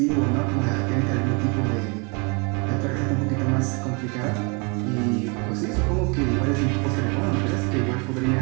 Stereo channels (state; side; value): quieter; left; 32.5 dB